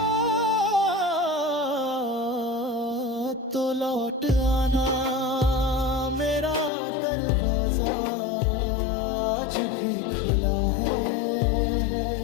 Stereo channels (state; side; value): drops out; right; at 6.7 s